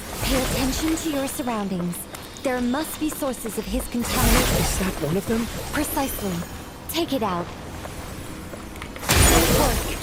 Pay attention to your surroundings. There must be sources of his contamination. Is that one of them? Precisely. Take it out. Good work.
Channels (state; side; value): identical; both; correlation 1.00